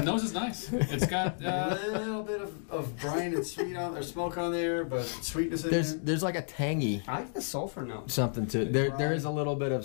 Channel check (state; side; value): silent; right; digital silence